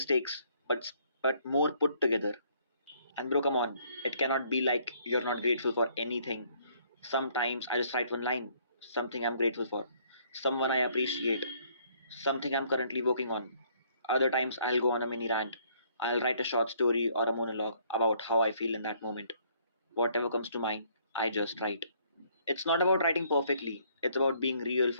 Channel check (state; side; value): inverted; both; correlation -0.64